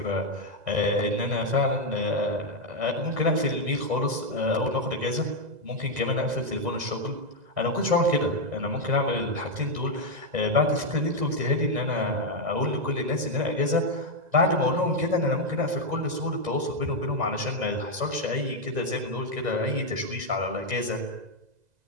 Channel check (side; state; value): left; late; 2.0 ms